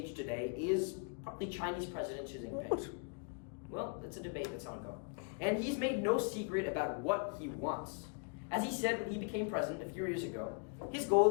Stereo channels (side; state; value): right; quieter; 37.9 dB